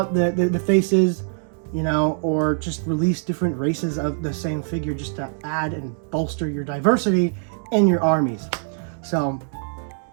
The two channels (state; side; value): silent; left; digital silence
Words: the faces, you know, or just release different races of the same figure just to add and bolster your diversity in your armies. So